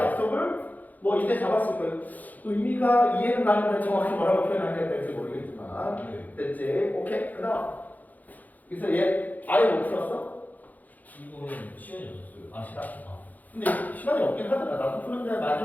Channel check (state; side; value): late; right; 0.081 ms